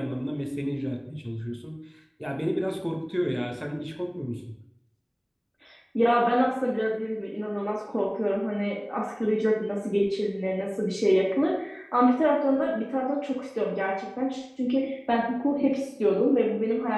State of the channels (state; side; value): identical; both; correlation 1.00